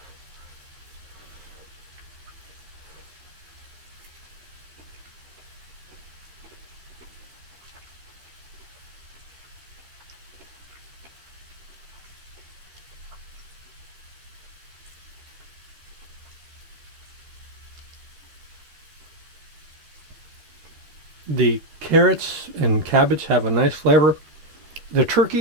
The carrots and cabbage have a nice flavor. The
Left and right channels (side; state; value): left; late; 13 ms